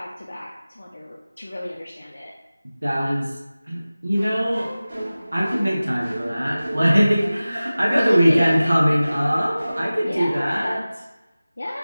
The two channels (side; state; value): both; inverted; correlation -0.97